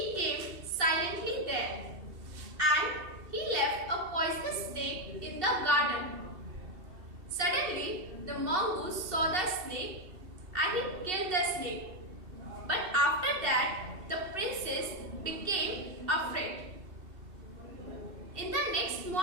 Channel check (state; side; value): late; left; 2.7 ms